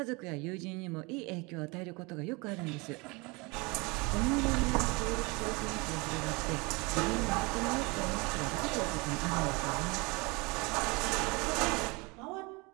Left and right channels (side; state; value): left; quieter; 26.9 dB